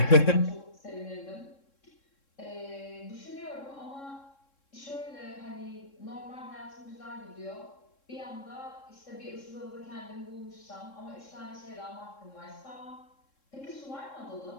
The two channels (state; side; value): late; right; 3.7 ms